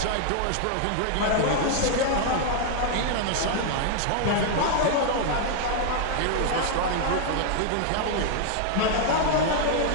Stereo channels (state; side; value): different; both; correlation 0.00